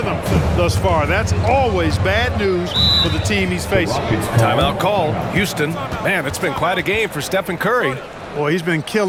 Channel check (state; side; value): identical; both; correlation 1.00